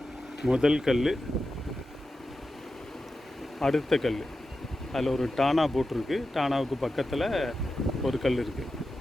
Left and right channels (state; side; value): normal; both; correlation 0.91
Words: முதல் கல், அடுத்த கல், அதில் ஒரு டானா போட்டிருக்கு. டானாவுக்கு பக்கத்தில் ஒரு கல் இருக்குது,